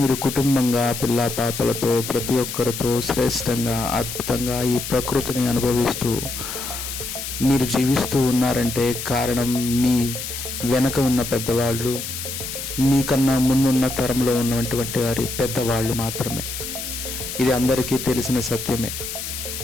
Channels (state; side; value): noise; left; hiss, 7 dB below the sound